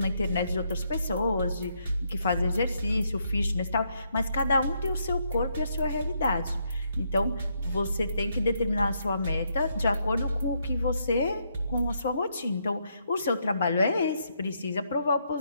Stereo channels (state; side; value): inverted; both; correlation -0.76